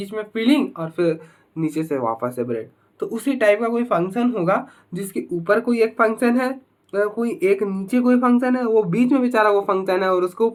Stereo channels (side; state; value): both; identical; correlation 1.00